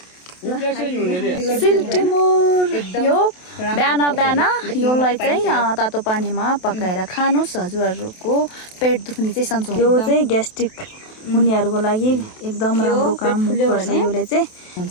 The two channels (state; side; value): late; right; 28 ms